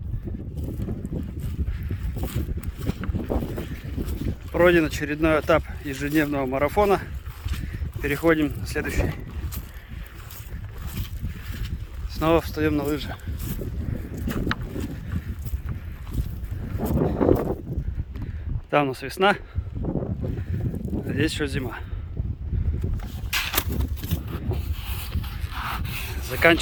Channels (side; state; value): both; identical; correlation 1.00